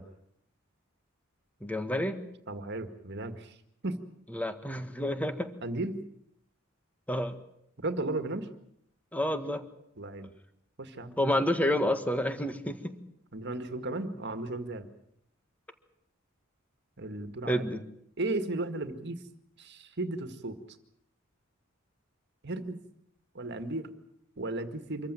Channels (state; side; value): normal; both; correlation 0.61